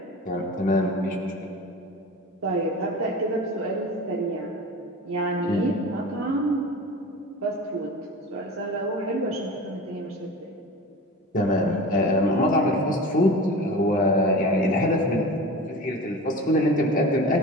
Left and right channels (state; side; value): normal; both; correlation 0.34